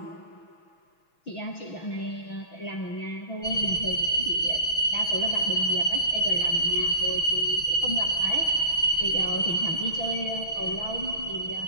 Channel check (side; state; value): right; late; 6.2 ms